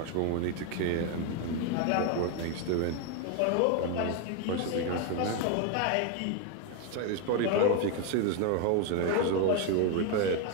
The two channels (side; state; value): both; different; correlation 0.01